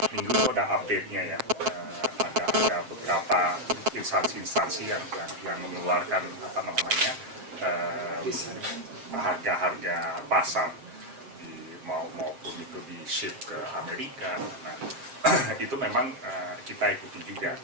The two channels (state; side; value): late; left; 7.5 ms